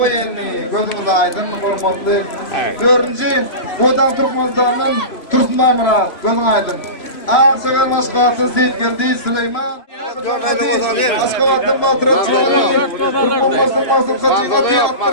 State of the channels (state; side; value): late; right; 3.0 ms